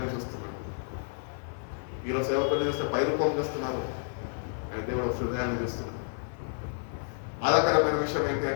చూస్తున్నాడు. ఈరోజు సేవకులు చూస్తే పై రూపం చూస్తున్నారు, కానీ దేవుడు హృదయాన్ని చూస్తున్నాడు. బాధాకరమైన విషయం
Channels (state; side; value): silent; right; 58 dB below the other